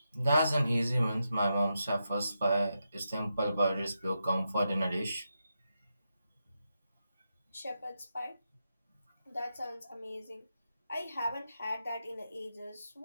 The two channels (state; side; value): inverted; both; correlation -0.86